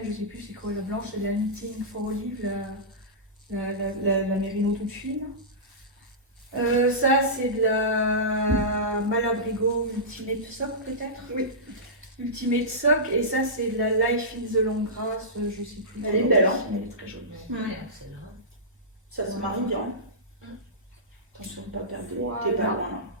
je sais plus c'est quoi la blanche, c'est la Knitting for Olive, la mérino toute fine. Ça c'est de la Malabrigo Ultimate Sock peut-être. Oui. Ultimate Sock et ça c'est de la Life in the Long Grass, je sais plus. Elle est belle, hein. Elle est très jolie. Ça se marie bien. Attention de ne pas perdre. Voilà. T'es pas loin là.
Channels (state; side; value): normal; both; correlation -0.17